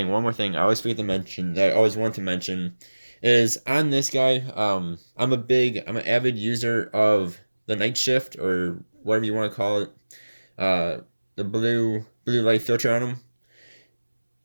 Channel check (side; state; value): both; inverted; correlation -1.00